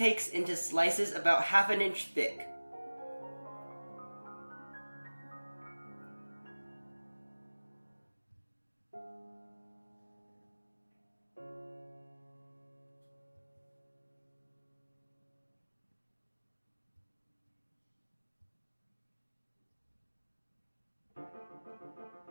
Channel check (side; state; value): both; inverted; correlation -1.00